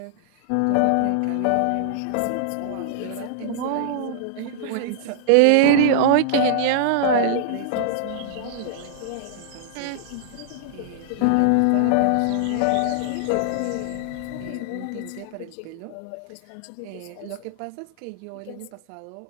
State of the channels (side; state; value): both; different; correlation -0.01